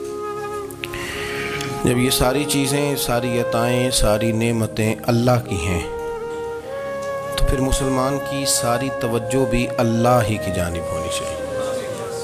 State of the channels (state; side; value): identical; both; correlation 1.00